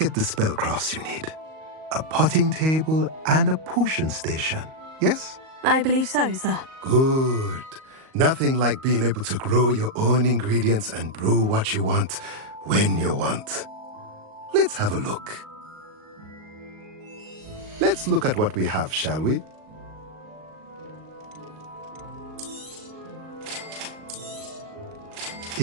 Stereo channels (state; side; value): late; left; 38 ms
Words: the spellcrafts you need. A potting table and a potion station, yes? I believe so, sir. Good. Nothing like being able to grow your own ingredients and brew what you want when you want. Let's have a look. Let's look at what we have, shall we?